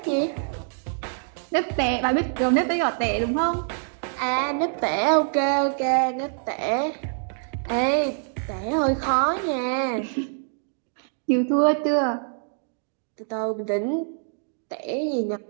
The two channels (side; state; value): left; silent; digital silence